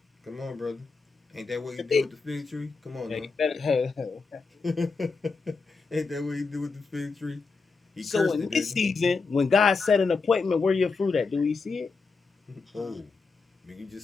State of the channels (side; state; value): right; quieter; 4.4 dB